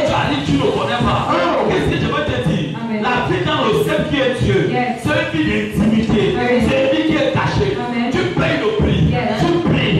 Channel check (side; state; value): both; identical; correlation 1.00